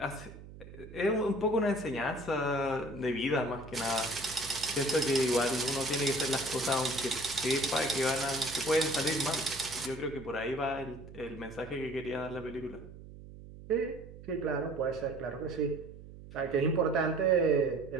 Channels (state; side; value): noise; right; hum, 16 dB below the sound